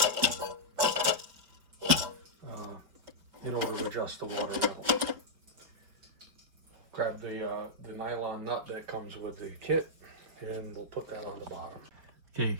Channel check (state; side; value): late; left; 5.4 ms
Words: in order to adjust the water level. Grab the nylon nut that comes with the kit, and we'll put that on the bottom. Okay, you